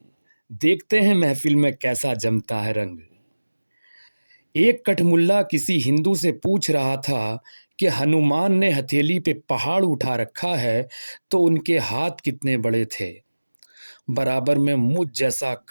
देखते हैं महफिल में कैसा जमता है रंग। एक कठमुल्ला किसी हिंदू से पूछ रहा था कि हनुमान ने हथेली पे पहाड़ उठा रखा है तो उनके हाथ कितने बड़े थे। बराबर में मुझ जैसा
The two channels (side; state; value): both; inverted; correlation -1.00